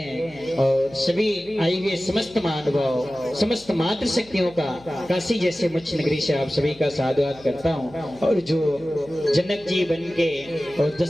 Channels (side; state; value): left; noise; hum, 24 dB below the sound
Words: और सभी आई हुए समस्त महानुभाव, समस्त मातृ शक्तियों का काशी जैसे मुच्छ नगरी से आप सभी का साधुवाद करता हूँ। और जो जनक जी बन के और